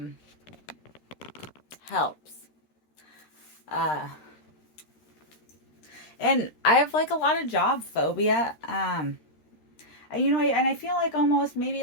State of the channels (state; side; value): late; right; 13 ms